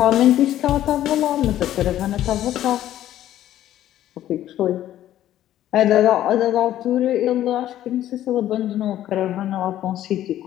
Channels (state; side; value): quieter; right; 12.7 dB